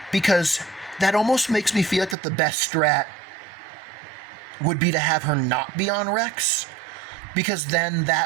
because that almost makes me feel like that the best strat would be to have her not be on Rex, because then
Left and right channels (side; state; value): left; drops out; at 2.1 s